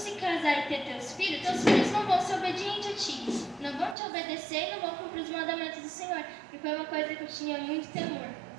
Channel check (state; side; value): drops out; left; at 4.0 s